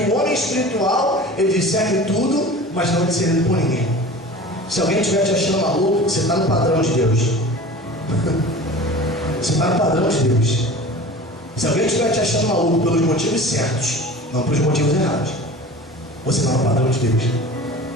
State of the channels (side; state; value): both; normal; correlation 0.38